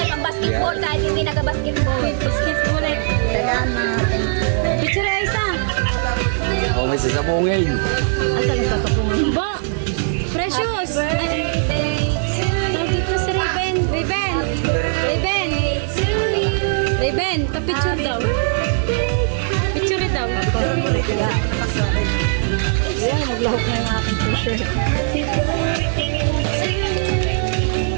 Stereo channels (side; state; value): left; silent; digital silence